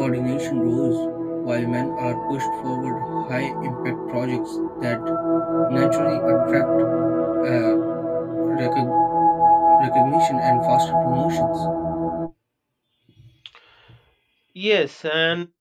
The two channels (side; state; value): both; identical; correlation 1.00